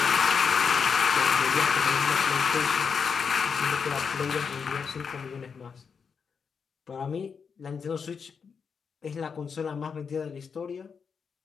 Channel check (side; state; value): right; quieter; 6.1 dB